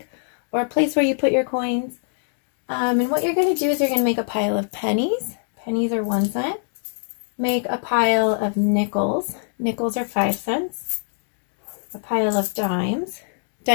or a place where you put your coins. And what you're going to do is you're going to make a pile of pennies. Pennies are 1 cent. Make a pile of nickels. Nickels are 5 cents. A pile of dimes.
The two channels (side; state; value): right; silent; digital silence